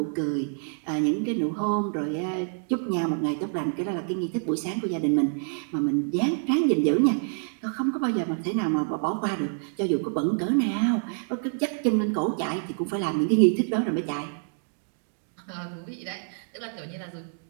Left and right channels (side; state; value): left; silent; 60 dB below the other